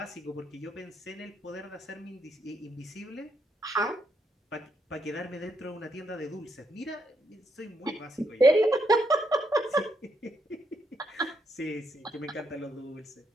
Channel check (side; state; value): both; normal; correlation 0.78